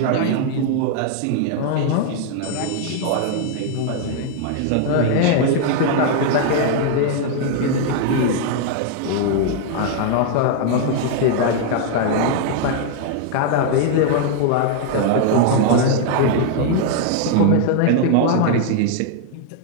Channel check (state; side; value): different; both; correlation 0.00